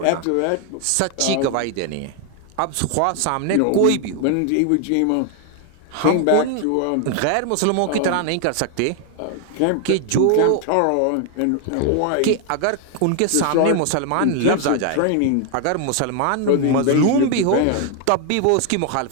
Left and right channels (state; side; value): different; both; correlation 0.00